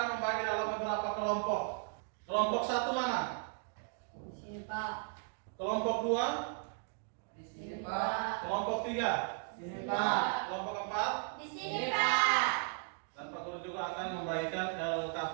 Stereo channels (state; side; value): silent; left; 54 dB below the other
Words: membagi dalam beberapa kelompok. Kelompok satu mana? Di sini Pak. Kelompok dua? Di sini Pak. Kelompok tiga? Di sini Pak. Kelompok empat? Di sini Pak. Dan Pak Guru juga akan membagikan